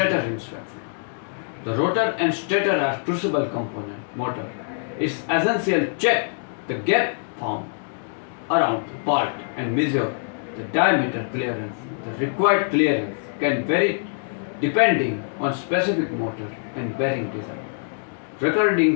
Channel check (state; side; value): silent; right; digital silence